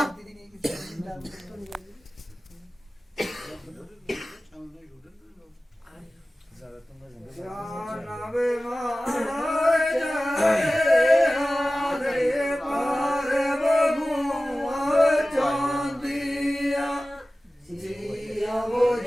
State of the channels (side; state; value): both; normal; correlation 0.96